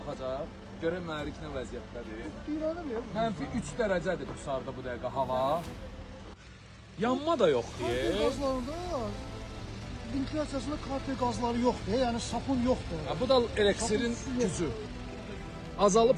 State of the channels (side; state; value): both; identical; correlation 1.00